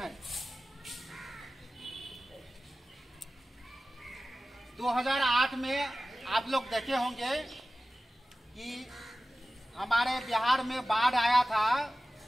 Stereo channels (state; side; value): normal; both; correlation 0.96